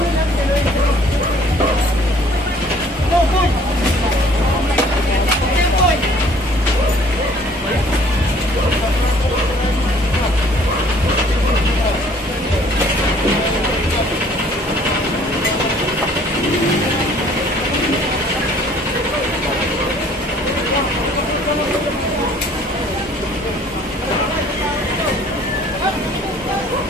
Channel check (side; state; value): both; normal; correlation 0.56